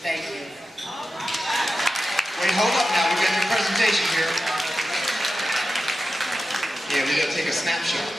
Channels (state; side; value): normal; both; correlation 0.92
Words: Thank you. Wait, hold up now. We got your presentation here. Yeah, we got to take a snapshot.